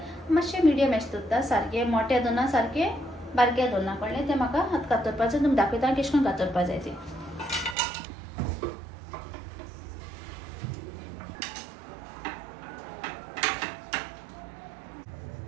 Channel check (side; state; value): left; drops out; at 7.8 s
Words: मातशे मिडियम एश दवरता सारखे मोठे दोना सारखे बारके दोना कळ्ळे ते म्हाका आतां कातरपाचें तुमकां दाखयता कशें करून कातरपा जाय ते